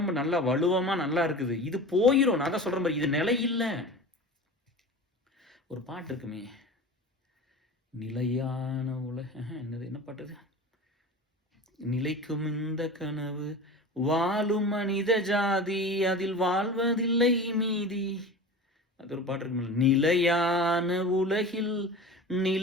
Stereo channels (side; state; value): both; normal; correlation 0.34